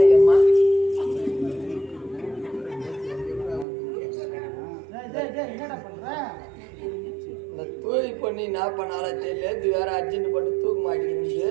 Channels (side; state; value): left; drops out; at 3.7 s